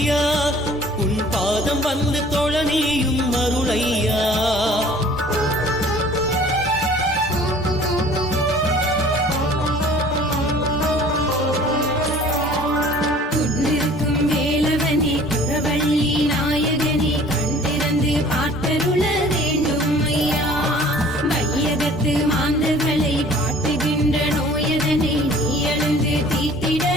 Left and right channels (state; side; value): normal; both; correlation 0.50